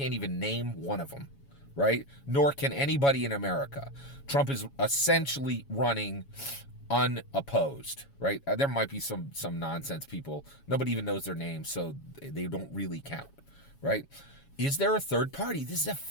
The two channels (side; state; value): right; late; 7.2 ms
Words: even name one of them, right? Nor can anybody in America. Trump is essentially running unopposed, right? There might be some nonsense people. Nobody even knows their names, so they don't really count, right? Is there a third party? This is a